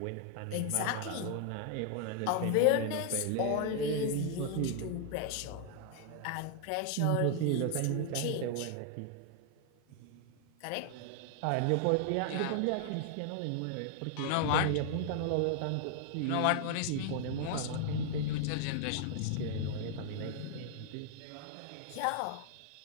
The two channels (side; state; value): both; different; correlation 0.00